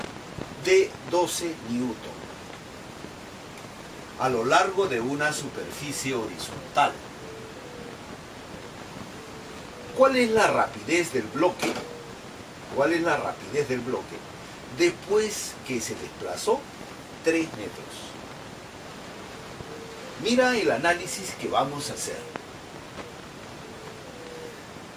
de 12 newton a lo largo de una superficie horizontal. ¿Cuál es la rapidez del bloque? ¿Cuál es la rapidez del bloque después que se desplazó 3 metros? Mira el análisis que vamos a hacer.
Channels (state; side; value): identical; both; correlation 1.00